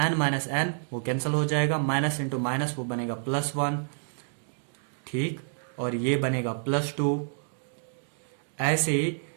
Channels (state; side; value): silent; left; digital silence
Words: n-n वो कैंसिल हो जाएगा, माइनस इंटू माइनस वो बनेगा +1. ठीक, और ये बनेगा +2. ऐसे ही